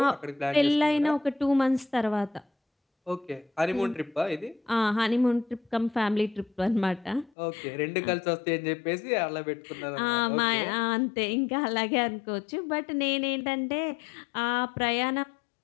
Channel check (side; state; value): right; drops out; at 7.3 s